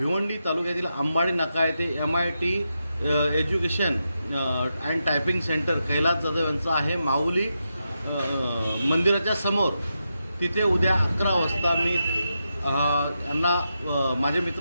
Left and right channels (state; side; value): inverted; both; correlation -0.87